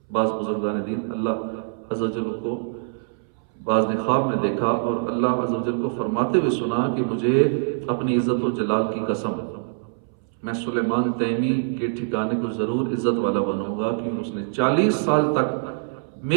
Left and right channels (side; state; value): left; silent; 63 dB below the other